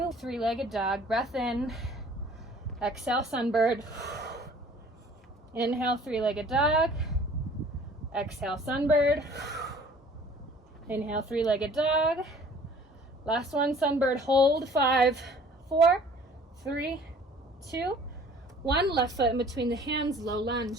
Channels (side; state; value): both; normal; correlation 0.51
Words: three-legged dog. Breath in, exhale, sunbird. Inhale, three-legged dog. Exhale, sunbird. Inhale, three-legged dog. Last one, sunbird, hold. 5, 4, 3, 2, 1. Left foot in between the hands, low